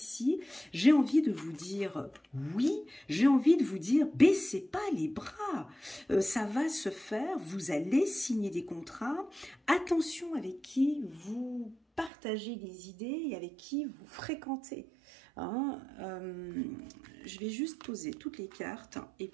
j'ai envie de vous dire oui, j'ai envie de vous dire baissez pas les bras. Ça va se faire, vous allez signer des contrats. Attention avec qui vous partagez des idées et avec qui vous fréquentez. Hein, je vais juste poser toutes les cartes et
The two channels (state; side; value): drops out; left; at 12.1 s